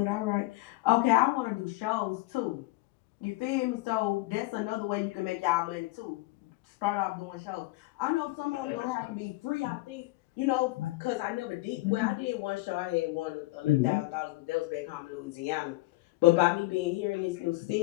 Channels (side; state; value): right; quieter; 20.5 dB